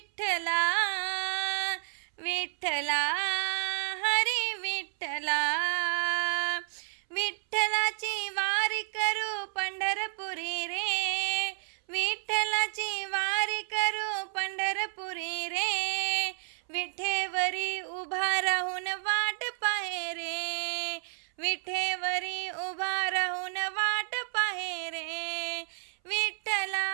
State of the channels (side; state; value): left; silent; 57 dB below the other